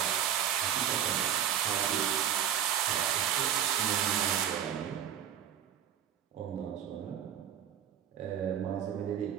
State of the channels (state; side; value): quieter; left; 9.6 dB